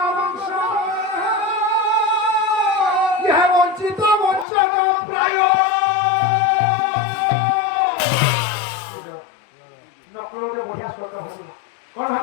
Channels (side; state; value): right; drops out; at 4.5 s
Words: ইহ বঞ্চিত বঞ্চক প্রায় নকলরে বঢ়িয়া শব্দ হইল কোন